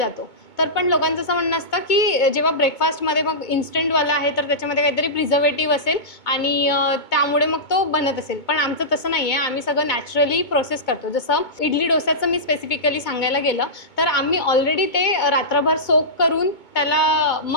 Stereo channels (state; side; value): late; right; 2.2 ms